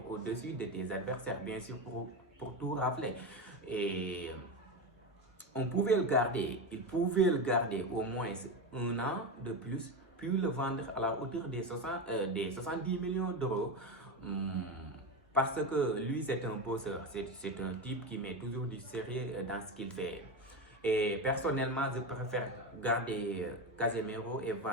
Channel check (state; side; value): normal; both; correlation 0.17